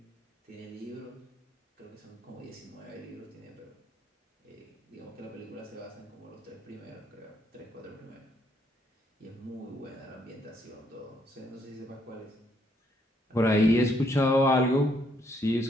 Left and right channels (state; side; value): normal; both; correlation 0.71